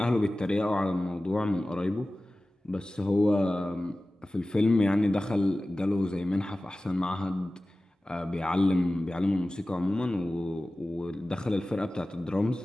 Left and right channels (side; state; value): both; normal; correlation 0.96